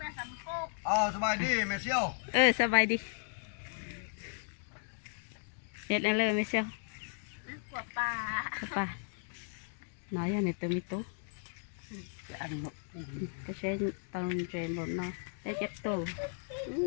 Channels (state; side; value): silent; right; 54 dB below the other